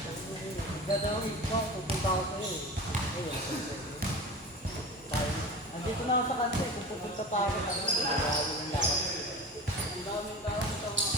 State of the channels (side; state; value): both; normal; correlation 0.33